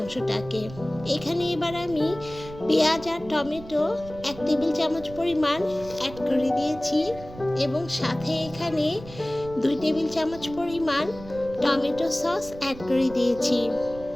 এখানে এবার আমি পেঁয়াজ আর টমেটো 1 টেবিল চামচ পরিমাণ অ্যাড করে দিয়েছি এবং সাথে এখানে 2 টেবিল চামচ পরিমাণ টমেটো সস অ্যাড করে দিয়েছি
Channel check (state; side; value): noise; right; rumble, 16 dB below the sound